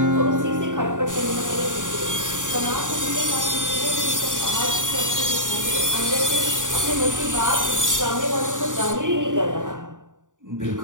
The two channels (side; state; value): left; late; 0.87 ms